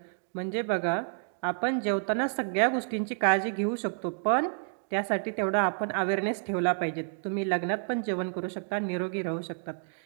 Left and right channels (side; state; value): left; silent; digital silence